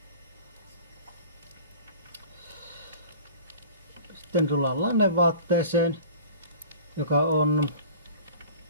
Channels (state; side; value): inverted; both; correlation -0.41